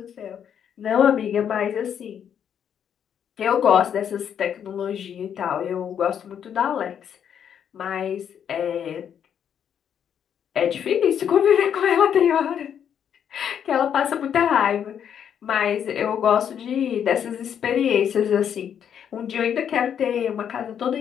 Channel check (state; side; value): quieter; right; 8.6 dB